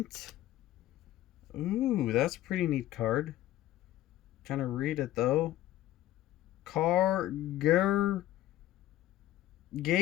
Ooh, that's a pretty neat card. Trying to read it though.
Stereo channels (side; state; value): right; quieter; 14.4 dB